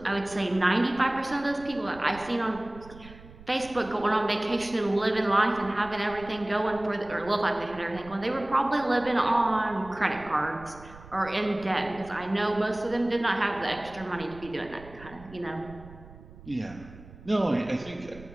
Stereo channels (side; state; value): right; noise; rumble, 19 dB below the sound